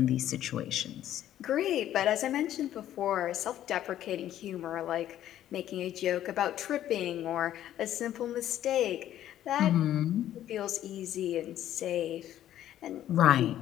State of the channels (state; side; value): quieter; right; 12.0 dB